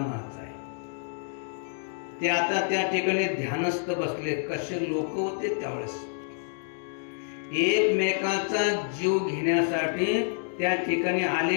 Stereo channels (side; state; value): right; silent; digital silence